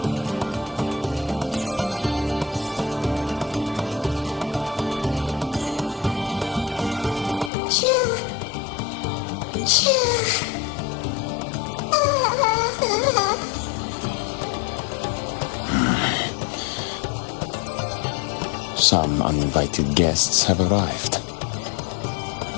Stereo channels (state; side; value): drops out; right; at 7.5 s